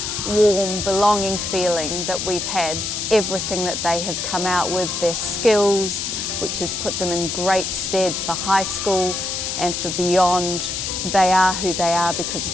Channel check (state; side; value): noise; left; hiss, 3 dB below the sound